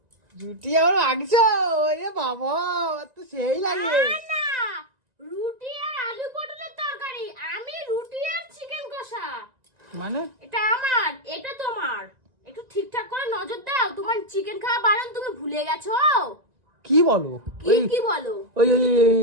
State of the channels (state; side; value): late; left; 1.9 ms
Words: রুটি আবার মাংস, ওরে বাবা তো সেই লাগে। না, রুটি আর আলু পটলের তরকারি, আমি রুটি আর চিকেন কষা। মানে এটা আমার, এটা তোমার। একটু ঠিকঠাক করে নজর দাও, তোমার চিকেন খাওয়া বারণ, তুমি ভুলে গেছো। কি বলো? কি বলো? ওই